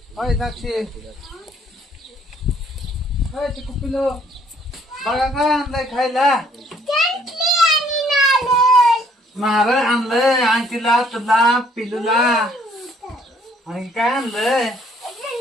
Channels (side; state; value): both; normal; correlation 0.63